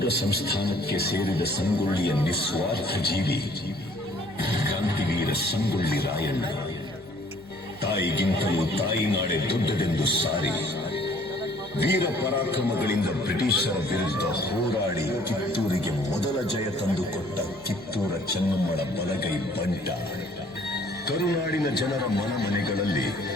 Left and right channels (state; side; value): noise; left; hum, 24 dB below the sound